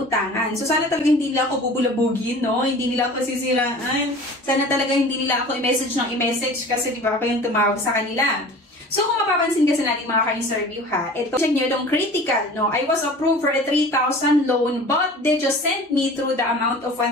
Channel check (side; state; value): both; normal; correlation 0.42